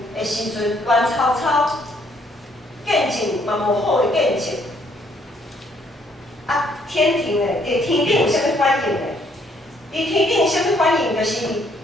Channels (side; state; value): both; normal; correlation 0.67